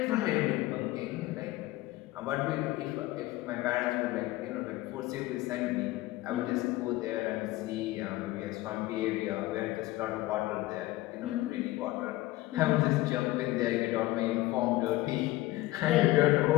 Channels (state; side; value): quieter; right; 17.8 dB